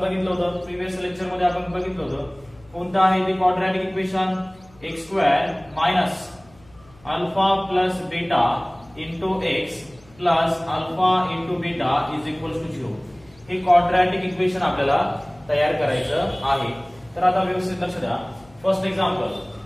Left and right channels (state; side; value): noise; left; hum, 27 dB below the sound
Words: होतं, प्रीवियस लेक्चर मध्ये आपण बघितलं होतं। कोणतं आहे ते quadratic equation? x² minus alpha plus beta into x plus alpha into beta is equal to 0। हे क्वाड्रॅटिक इक्वेशन आपल्याला तयार करायचं आहे। तर आता व्यवस्थित लक्ष द्या। फर्स्ट